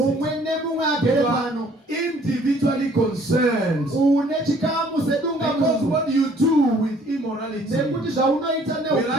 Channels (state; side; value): normal; both; correlation 0.59